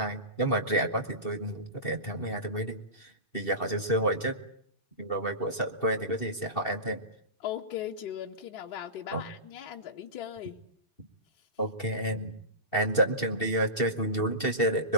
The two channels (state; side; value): late; right; 2.7 ms